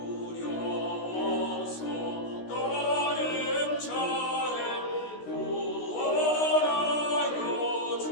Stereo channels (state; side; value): late; right; 16 ms